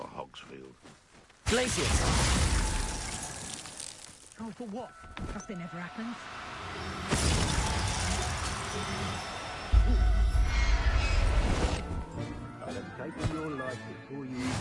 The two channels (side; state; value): both; identical; correlation 1.00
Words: Hogsfield? Glacius! Oh, for what? Nothing ever happens. I'll have taken your life before you